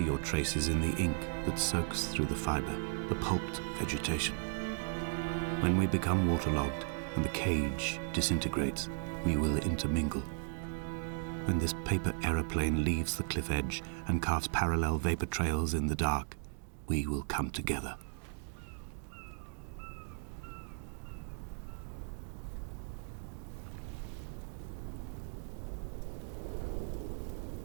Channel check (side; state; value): left; silent; digital silence